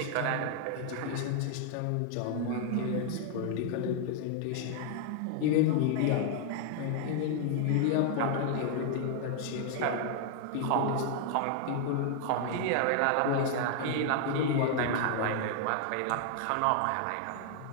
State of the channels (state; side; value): different; both; correlation 0.00